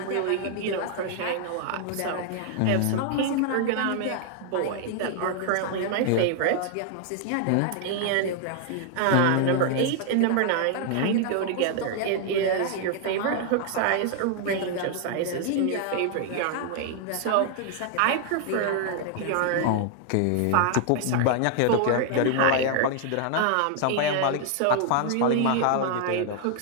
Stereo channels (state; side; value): different; both; correlation 0.00